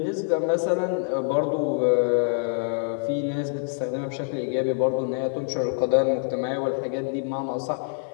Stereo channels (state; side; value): silent; right; digital silence